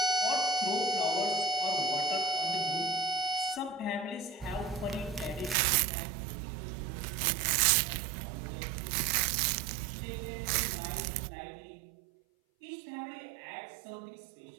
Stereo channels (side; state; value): left; drops out; at 5.6 s